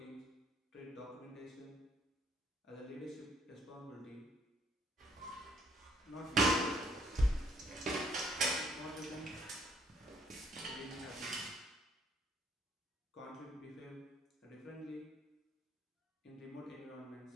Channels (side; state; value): both; normal; correlation 0.66